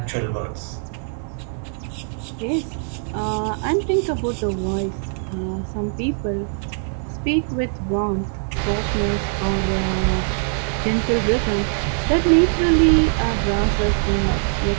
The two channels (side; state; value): left; silent; 60 dB below the other